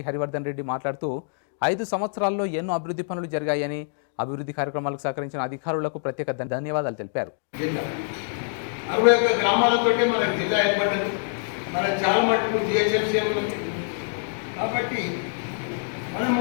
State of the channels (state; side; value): silent; right; digital silence